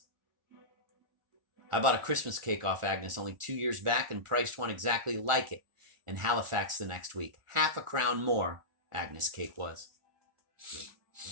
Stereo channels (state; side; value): late; left; 1.4 ms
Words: I bought a Christmas cake off Agnes only 2 years back and priced one exactly like it in Halifax the next week. Half a crown more, Agnes' cake was.